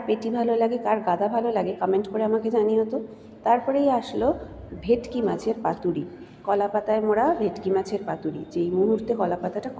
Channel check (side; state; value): both; identical; correlation 1.00